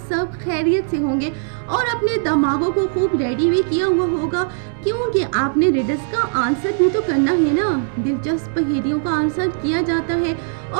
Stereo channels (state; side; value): silent; left; 59 dB below the other